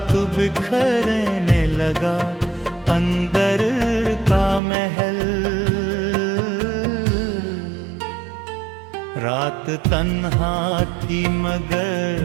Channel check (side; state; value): left; drops out; at 4.6 s